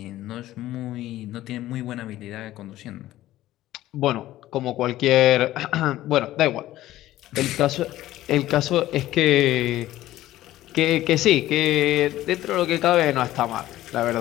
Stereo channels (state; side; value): quieter; right; 14.9 dB